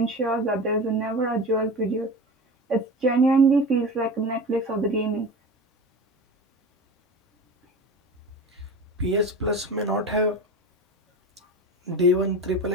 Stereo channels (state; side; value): normal; both; correlation 0.31